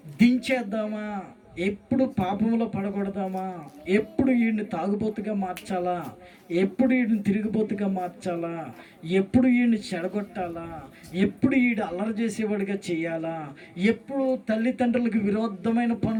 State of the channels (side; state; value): both; identical; correlation 1.00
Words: దించేద్దామా ఎప్పుడు పాపంలో పడకూడదామా, ఎప్పుడు వీడిని తాగుబోతుగా మార్చాలా, ఎప్పుడు వీడిని తిరిగిపోతుగా మార్చాలా, ఎప్పుడు వీడిని చెడగొట్టాలా, ఎప్పుడు వీడు అల్లరి చేసేవాడిగా చేయాలా, ఎప్పుడు తల్లిదండ్రులకు విరోధమైన